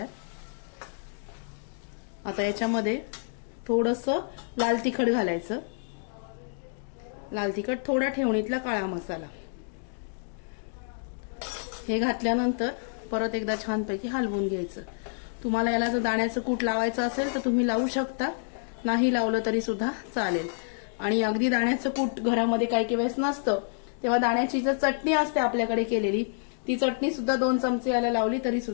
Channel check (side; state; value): right; silent; digital silence